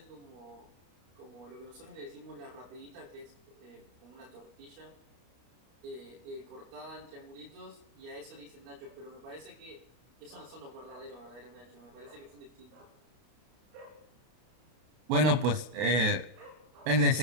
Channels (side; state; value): left; late; 32 ms